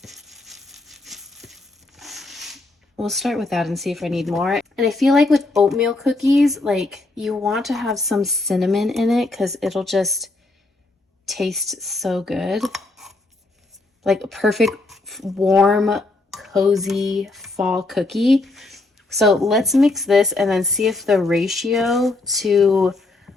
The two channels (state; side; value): quieter; right; 3.1 dB